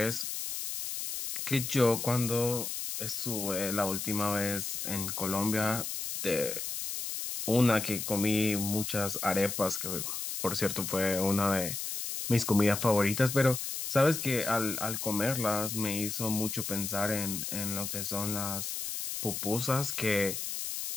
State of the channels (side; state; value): left; noise; hiss, 4 dB below the sound